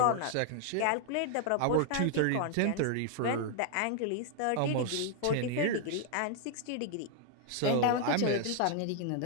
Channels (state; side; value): different; both; correlation 0.00